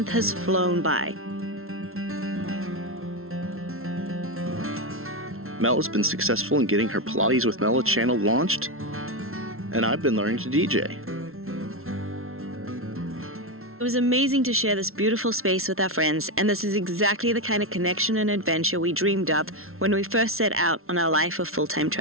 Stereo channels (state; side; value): late; left; 0.62 ms